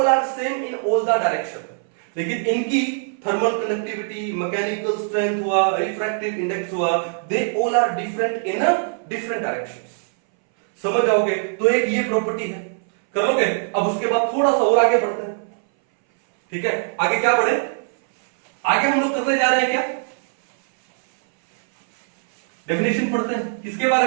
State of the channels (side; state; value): left; silent; 62 dB below the other